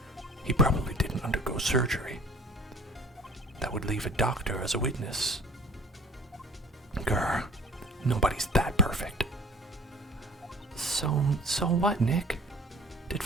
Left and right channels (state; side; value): normal; both; correlation 0.49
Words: He probably didn't undergo surgery. That would leave a doctor as a witness. Grr, nobody's that perfect. So what, Nick? Did